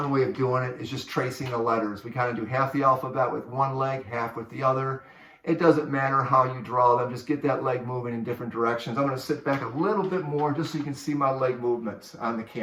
way of doing it is just tracing the letters. We kind of do half the alphabet with one leg, half with the other. It doesn't matter how you draw them. Just get that leg moving in different directions. I'm going to sit back a little bit more just so you can see my leg movements on the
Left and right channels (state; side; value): identical; both; correlation 1.00